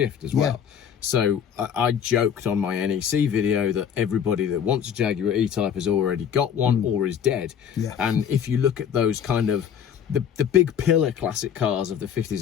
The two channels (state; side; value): quieter; right; 8.3 dB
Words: as well. So I joked on my NEC video that everybody that wants a Jaguar E-Type has already got one or is dead. And if you look at those kind of the big pillar classic cars of the 50s